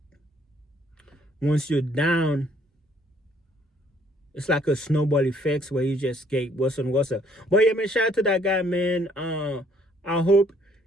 once you're down, it's like a snowball effect where you just get worse and worse. But yeah, man, shout out to that guy, man. I hope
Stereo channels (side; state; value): both; normal; correlation 0.64